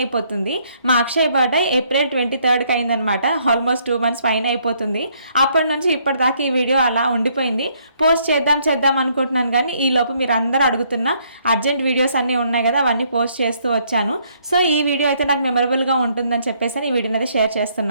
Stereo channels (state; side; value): inverted; both; correlation -0.69